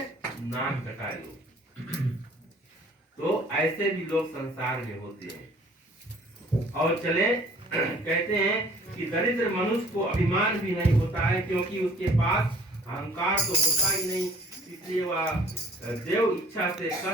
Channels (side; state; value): both; normal; correlation 0.54